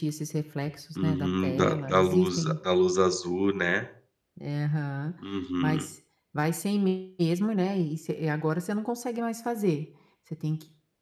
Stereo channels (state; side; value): identical; both; correlation 1.00